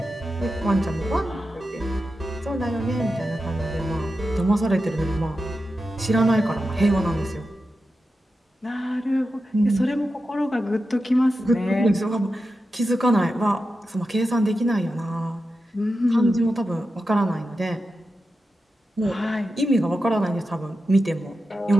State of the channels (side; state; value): both; normal; correlation 0.90